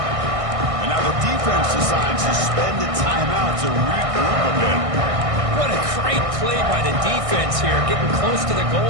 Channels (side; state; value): left; late; 1.6 ms